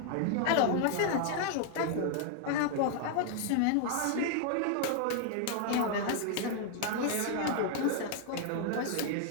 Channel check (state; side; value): different; both; correlation 0.00